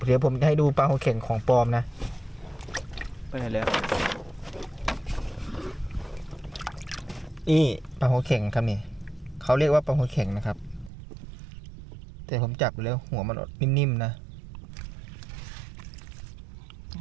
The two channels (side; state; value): left; drops out; at 10.9 s